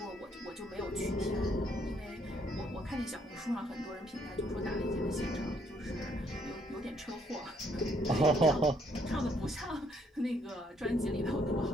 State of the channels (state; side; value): normal; both; correlation 0.69